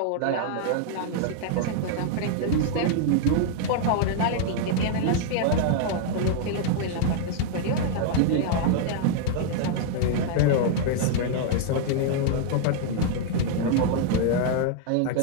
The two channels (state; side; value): different; both; correlation -0.01